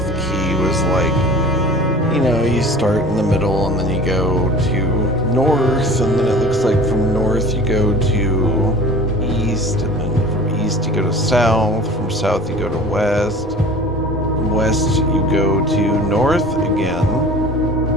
key was like, you know, you start in the middle and then you go to north, and then it looks like from north you go to east, and then from east you go to south, from south you go to west, from west you go to north again,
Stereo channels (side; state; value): both; normal; correlation 0.42